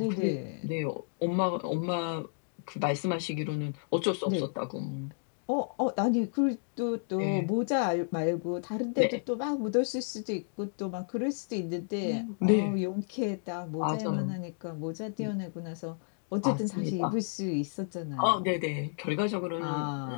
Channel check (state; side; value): silent; right; digital silence